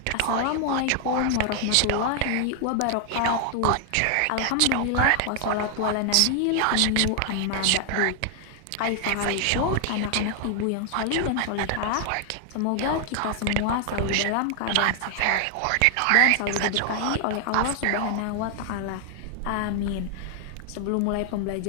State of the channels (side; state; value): both; different; correlation 0.00